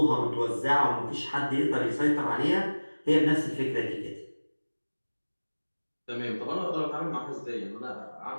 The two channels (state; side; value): inverted; both; correlation -1.00